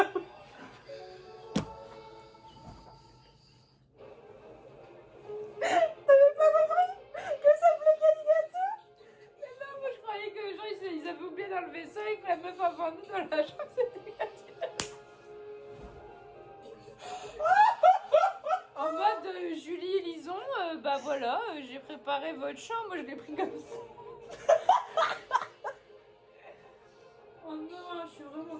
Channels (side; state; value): both; identical; correlation 1.00